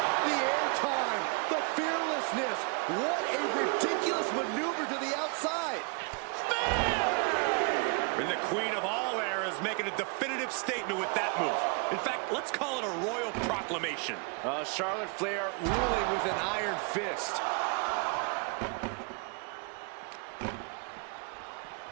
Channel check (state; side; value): quieter; left; 34.6 dB